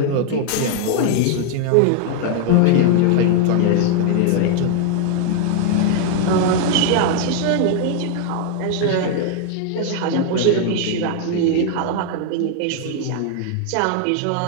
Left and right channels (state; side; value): different; both; correlation 0.00